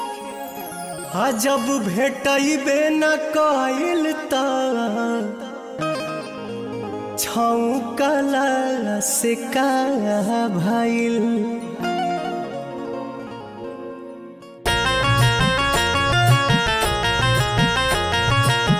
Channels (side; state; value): both; identical; correlation 1.00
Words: जब भेटबे न कइल त छौकला से का भइल।